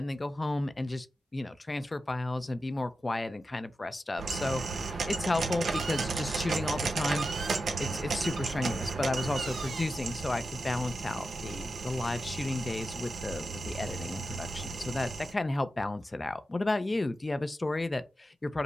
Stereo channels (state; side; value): normal; both; correlation 0.90